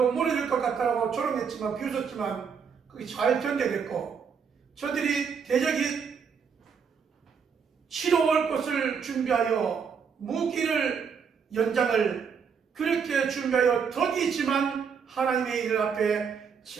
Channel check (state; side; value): quieter; left; 6.5 dB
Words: 무너질 것 같다고 조롱했지만 비웃었지만 그게 잘 견뎌냈고 저들이 대적이 치러올 것을 준비하여 무기를 연장을 그렇게 준비하여 덕이지만 하나님의 일 앞에